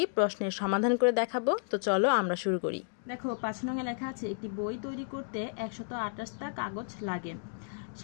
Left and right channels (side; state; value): right; silent; digital silence